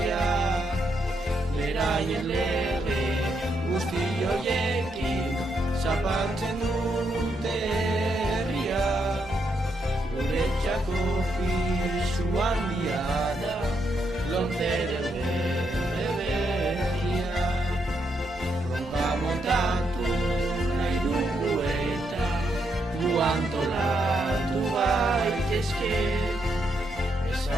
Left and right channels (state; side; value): normal; both; correlation 0.79